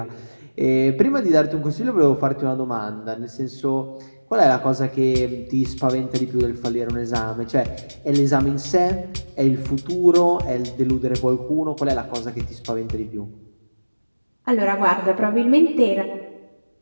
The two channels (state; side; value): inverted; both; correlation -1.00